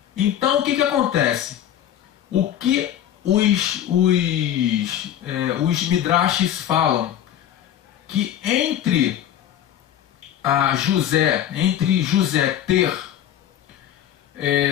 Então o que acontece? O que os midrashes falam? Que entre José ter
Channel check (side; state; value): right; quieter; 10.9 dB